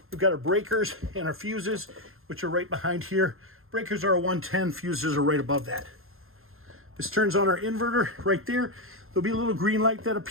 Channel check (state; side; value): late; left; 0.61 ms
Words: We've got our breakers and our fuses, which are right behind here. Breakers are a 110, fuses are right above that. This turns on our inverter right there. There'll be a little green light that